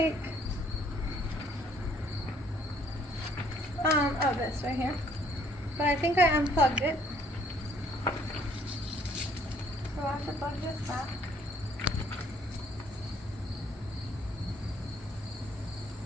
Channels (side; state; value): both; normal; correlation 0.62